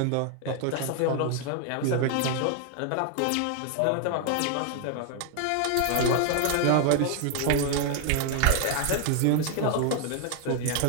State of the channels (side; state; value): both; different; correlation 0.00